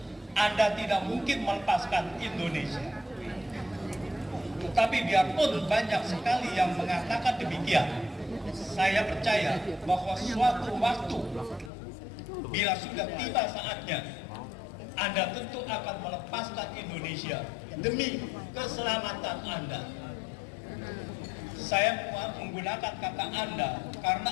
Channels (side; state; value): right; drops out; at 11.7 s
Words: Anda tidak mungkin melepaskan Indonesia. Tetapi biarpun banyak sekali yang mengatakan demikian, saya percaya bahwa suatu waktu bila sudah tiba saatnya, Anda tentu akan melepaskan Indonesia demi keselamatan Anda. Saya menggunakan kata Anda karena